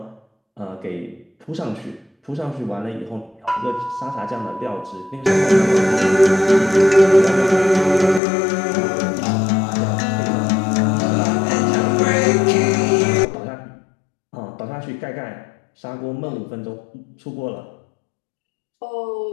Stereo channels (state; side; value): drops out; right; at 8.2 s